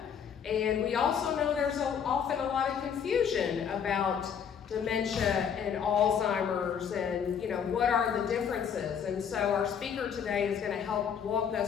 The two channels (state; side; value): quieter; right; 7.6 dB